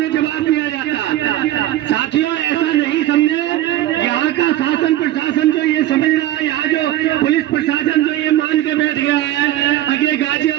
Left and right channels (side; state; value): left; quieter; 14.3 dB